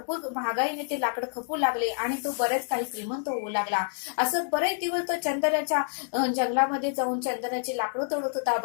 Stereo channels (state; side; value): silent; right; 59 dB below the other